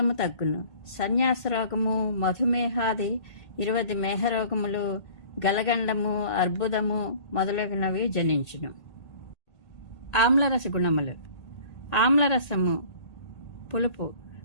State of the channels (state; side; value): late; right; 1.8 ms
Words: తగ్గును. సన్యాస రోగము, మధుమేహాది 20 మేహరోగములు, గలగండము, అర్బుదము మొదలగునవి జనించును. ఆమ్లరస గుణములు. ఆమ్లరసము పులుపు,